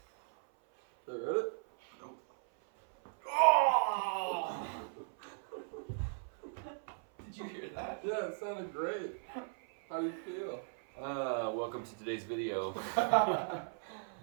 Okay, ready? Nope. Oh! Did you hear that? Yeah, it sounded great. How do you feel? Welcome to today's video. Oh,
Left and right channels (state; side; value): silent; left; 53 dB below the other